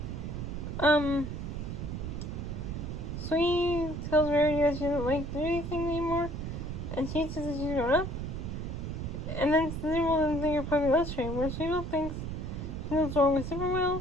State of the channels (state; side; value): noise; right; rumble, 5 dB below the sound